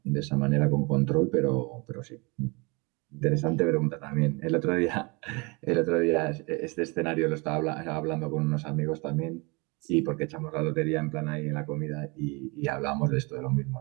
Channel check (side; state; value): left; quieter; 28.4 dB